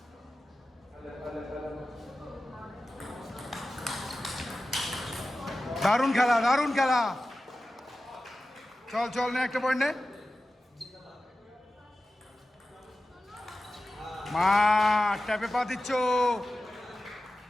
দারুণ খেলা, চল নে, একটা পয়েন্ট নে মা, ট্যাপে পা দিচ্ছ,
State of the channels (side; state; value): both; normal; correlation 0.94